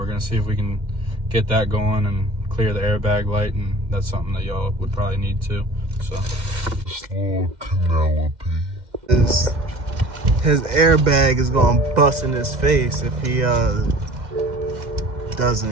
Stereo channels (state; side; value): late; left; 2.1 ms